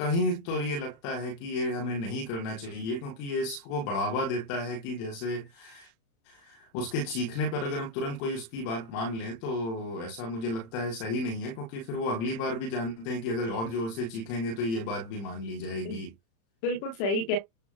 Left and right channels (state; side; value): late; right; 35 ms